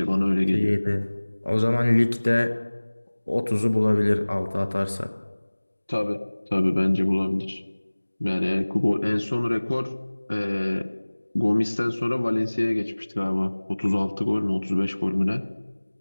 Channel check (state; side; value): inverted; both; correlation -1.00